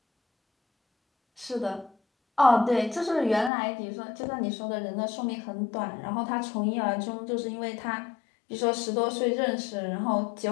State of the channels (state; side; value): drops out; right; at 3.5 s